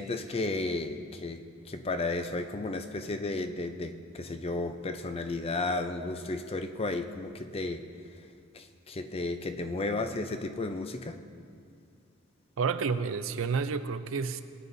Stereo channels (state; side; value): normal; both; correlation 0.36